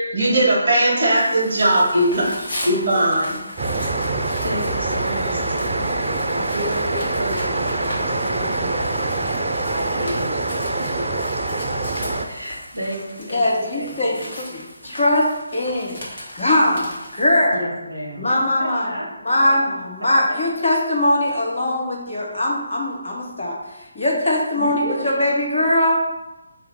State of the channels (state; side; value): inverted; both; correlation -0.75